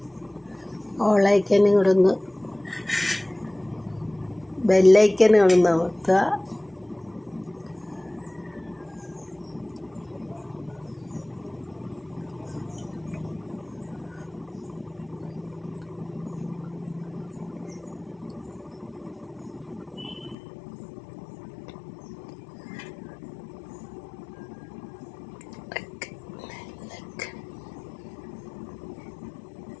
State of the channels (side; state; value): right; drops out; at 20.4 s